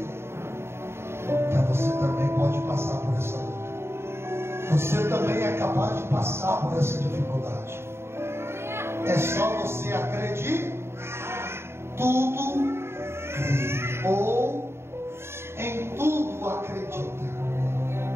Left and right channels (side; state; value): left; late; 0.12 ms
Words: Então você também pode passar por essa luta. Você também é capaz de passar por essa dificuldade. É só você acreditar. Tudo ou em tudo acredita.